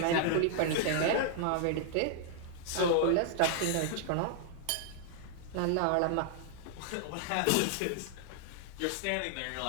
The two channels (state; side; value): different; both; correlation 0.00